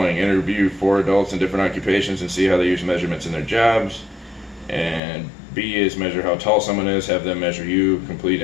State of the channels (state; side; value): drops out; right; at 5.0 s